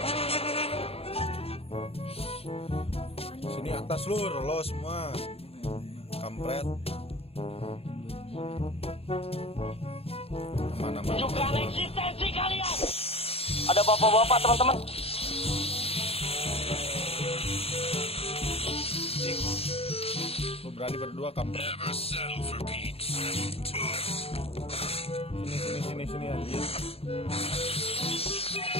Sini atas lur, lo semua kampret. Mana-mana. Tunjukkan eksistensi kalian. Ada bapak-bapak teman-teman. Lo berani berdua kampret. Sini anjir.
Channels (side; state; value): right; late; 0.28 ms